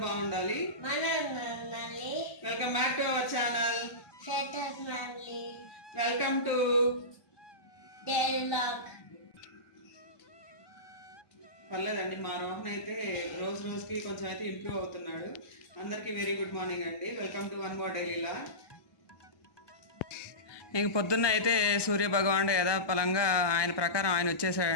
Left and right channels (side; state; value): right; late; 1.2 ms